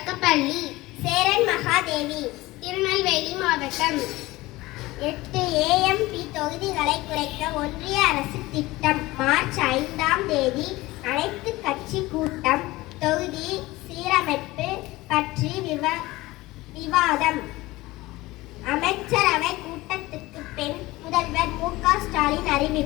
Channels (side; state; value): right; quieter; 19.5 dB